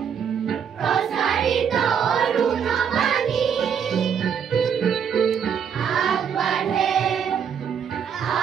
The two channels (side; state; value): left; quieter; 7.6 dB